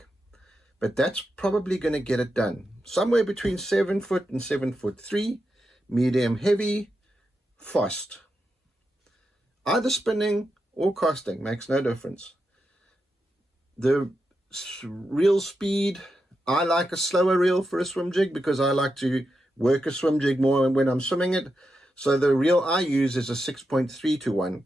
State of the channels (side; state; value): both; normal; correlation 0.87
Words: But that's probably going to get it done. Somewhere between 7 foot and 7'3", medium heavy, Fost. Either spinning or casting, makes no difference. The reel speed, I like a slower reel for a swim jig because I like to work a swim jig more when I'm swimming it. So the reel I use is a 6.3 to 1.